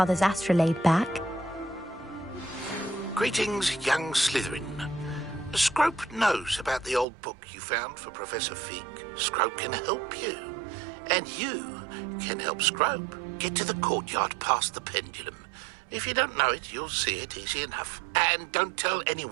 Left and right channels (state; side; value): drops out; left; at 7.1 s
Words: astrolabe back. Greetings, young Slytherin. Scrope knows about the old book you found for Professor Fig. Scrope can help you. And you can help Scrope get to the courtyard past the pendulum. If you don't know it, you'll see it easy enough. And don't tell